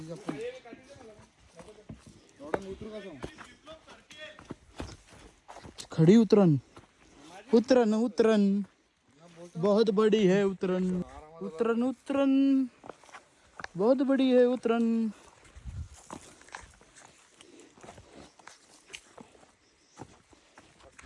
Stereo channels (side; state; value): both; identical; correlation 1.00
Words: खड़ी उतरन उतरन उतरन बहुत बड़ी है उतरन उतरन उतरन बहुत बड़ी है उतरन.